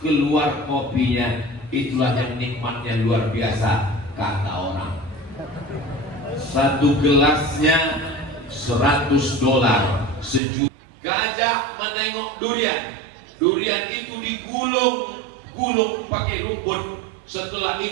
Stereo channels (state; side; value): drops out; left; at 10.4 s